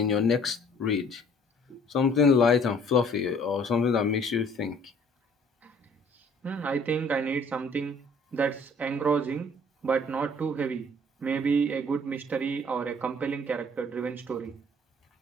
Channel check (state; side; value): normal; both; correlation 0.56